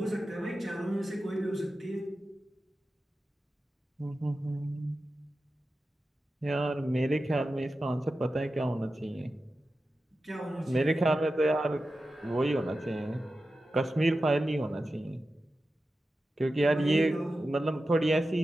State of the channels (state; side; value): normal; both; correlation 0.93